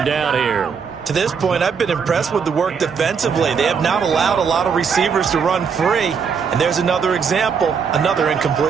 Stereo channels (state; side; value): quieter; left; 6.3 dB